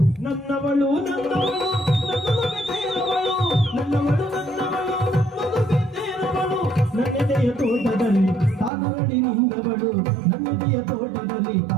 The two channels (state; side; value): drops out; left; at 8.7 s